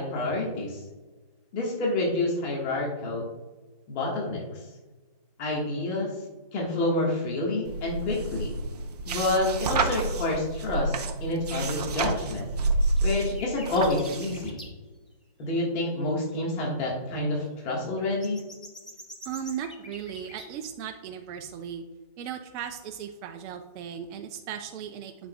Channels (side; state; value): both; inverted; correlation -0.30